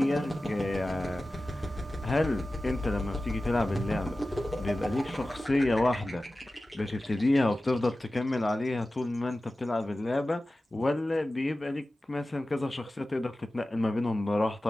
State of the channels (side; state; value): both; normal; correlation 0.95